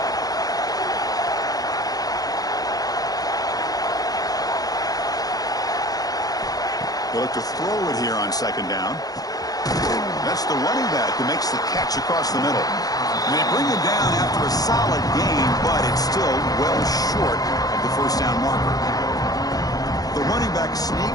They look to throw it here on 2nd down. That's the running back who makes the catch across the middle. And they bring him down after a solid gain, but it's still well short of the first down marker. The running back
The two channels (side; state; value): right; late; 0.18 ms